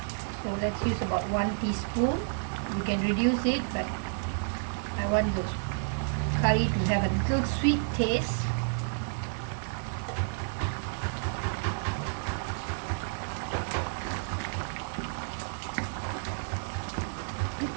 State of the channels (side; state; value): left; silent; 57 dB below the other